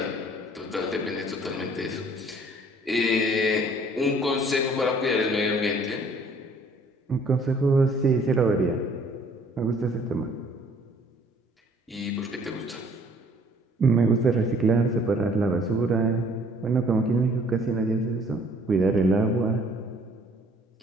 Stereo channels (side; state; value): both; normal; correlation 0.57